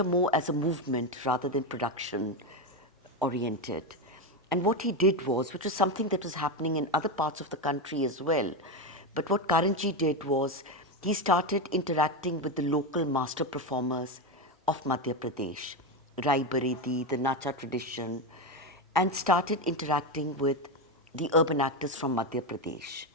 more as a movement rather than production oriented. And what he did was, which was something that was happening in other parts of the country as well, but what Karanji did was he started interacting with the local master performers of Madhya Pradesh, Rai Baredi, the Nacha tradition, and started interacting with the urban actors from Madhya Pradesh.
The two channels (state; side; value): normal; both; correlation 0.12